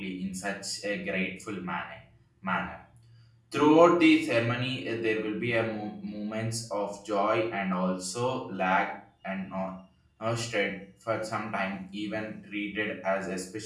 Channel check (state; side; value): identical; both; correlation 1.00